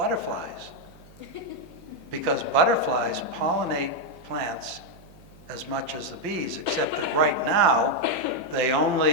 Because butterflies pollinate plants as much as the bees, except that right now they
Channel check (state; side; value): noise; right; hum, 23 dB below the sound